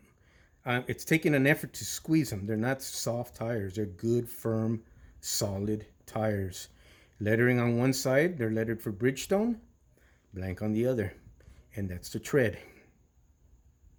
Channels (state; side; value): identical; both; correlation 1.00